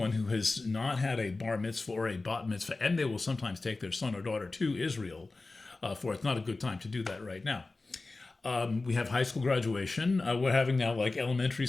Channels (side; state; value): right; quieter; 3.4 dB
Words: who has not had a bar mitzvah or a bat mitzvah, and they will sometimes take their son or daughter to Israel for it's not a good time to do that right now. We have high school graduation. We're having now like elementary